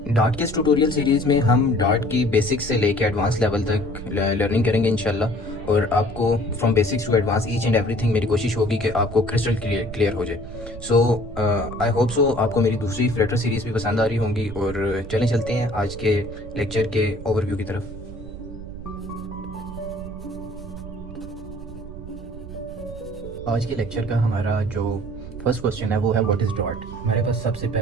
Dart के इस tutorial series में हम dart की basics से लेके advance level तक learning करेंगे इंशाल्लाह, और आपको from basics to advance each and everything मेरी कोशिश होगी कि आपको क्रिस्टल क्लियर हो जाए। सो आई होप सो आपको मेरी दूसरी फ्लटर सीरीज़ भी पसंद आ रही होंगी, और चलें चलते हैं आज के लेक्चर के ओवरव्यू की तरफ। आज के लेक्चर का हमारा जो फर्स्ट क्वेश्चन है वो है व्हाट इज़ डॉट। हमारे पास सबसे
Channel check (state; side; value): noise; right; rumble, 12 dB below the sound